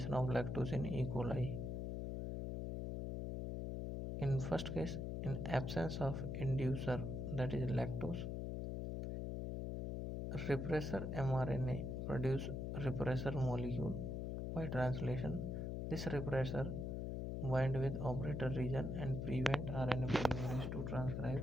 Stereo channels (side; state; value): left; noise; hum, 2 dB below the sound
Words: of lactose in E. coli. In first case, in absence of inducer, that is lactose, repressor mRNA produce repressor molecule by translation. This repressor bind with operator region and prevent RNA polymerase to transcribe